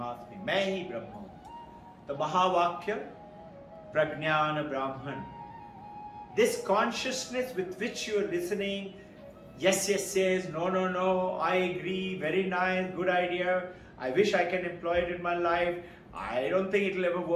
Main hi Brahman. The Mahavakya, Prajnana Brahman. This consciousness with which you are listening, yes, no, I agree, very nice, good idea, I wish I can employ it in my life, I don't think it will ever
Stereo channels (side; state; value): both; identical; correlation 1.00